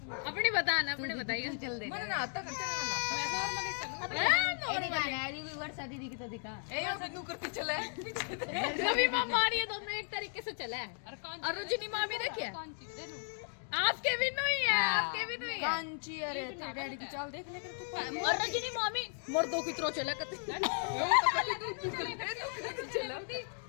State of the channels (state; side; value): silent; right; 54 dB below the other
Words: अपनी बताना अपनी बताइए चल दे मैंने ना आता चलना मैं नॉर्मली चलूं नॉर्मली यारी भी वर्षा दीदी की तो दिखा ए यो बिन्नू करती चला है रवि मां मारी है दोनों एक तरीके से चला है और रजनी मां भी देखिए आपके भी नहीं है आपके भी नहीं है कांची अरे तेरे डैडी की चाल देख ले कर तू और रजनी मामी मर्दों की तरह चला करती चला